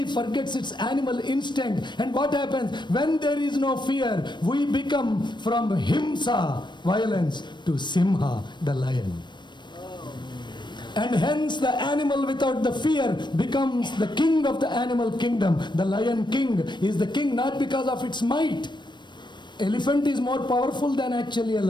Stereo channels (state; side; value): late; right; 0.22 ms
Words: forgets its animal instinct. And what happens? When there is no fear, we become from himsa, violence, to simha, the lion. And hence the animal without the fear becomes the king of the animal kingdom. The lion king is the king not because of its might. Elephant is more powerful than actually a